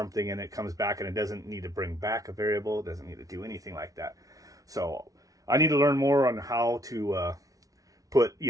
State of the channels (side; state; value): left; late; 0.17 ms